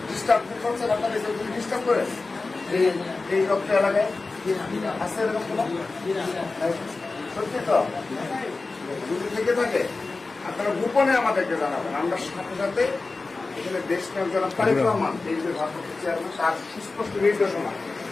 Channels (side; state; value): right; quieter; 3.7 dB